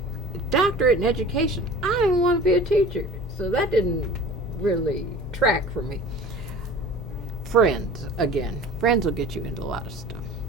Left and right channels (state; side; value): normal; both; correlation 0.42